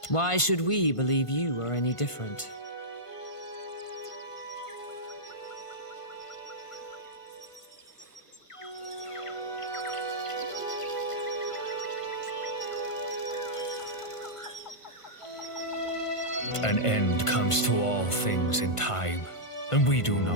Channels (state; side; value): late; right; 1.5 ms